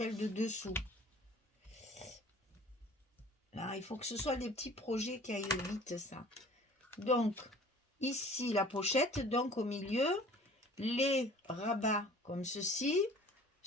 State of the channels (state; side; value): normal; both; correlation 0.48